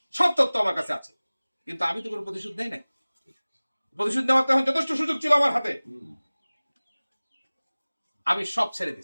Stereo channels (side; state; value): both; inverted; correlation -1.00